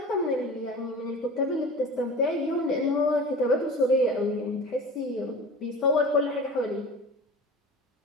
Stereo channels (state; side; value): normal; both; correlation 0.36